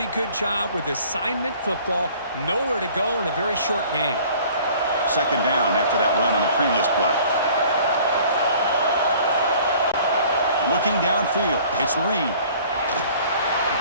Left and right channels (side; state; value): both; inverted; correlation -0.51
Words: good job with assignment football. Nowhere to go in a very short game. 2nd down after that run on the previous play. Looking downfield, it's Reed.